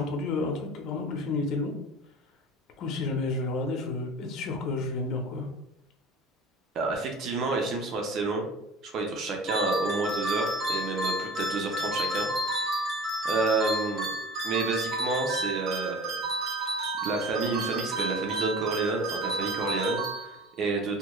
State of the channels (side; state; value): both; normal; correlation 0.38